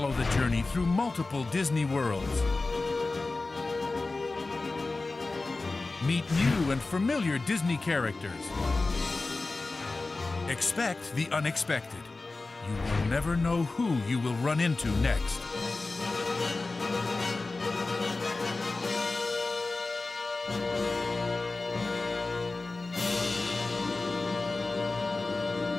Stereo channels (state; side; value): quieter; right; 3.5 dB